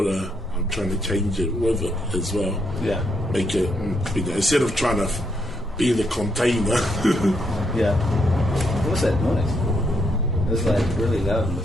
I'm trying to change it with it as well. Yeah. Make it, instead of trying to be the container. Yeah. What was that noise? It was like really loud. No,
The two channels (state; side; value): normal; both; correlation 0.76